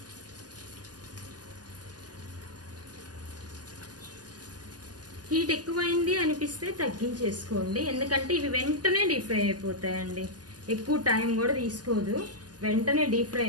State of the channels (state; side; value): late; left; 0.69 ms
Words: హీట్ ఎక్కువైంది అనిపిస్తే తగ్గించేసుకోండి. ఎందుకంటే ఇవి వెంటనే డీప్ ఫ్రై అయిపోతాయండి. ఎక్కువ టైం కూడా తీసుకోదు, వెంటనే డీప్ ఫ్రై